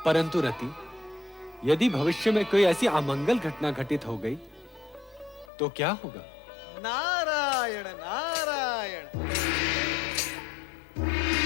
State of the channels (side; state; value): right; drops out; at 5.5 s